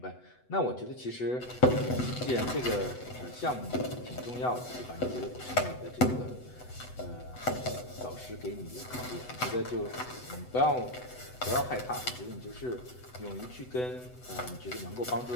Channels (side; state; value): right; late; 8.0 ms